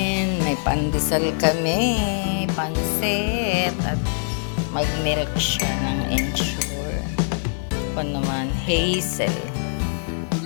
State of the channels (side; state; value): right; silent; digital silence